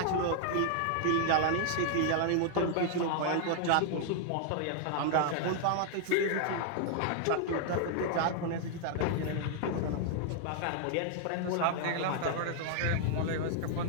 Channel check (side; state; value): both; different; correlation 0.00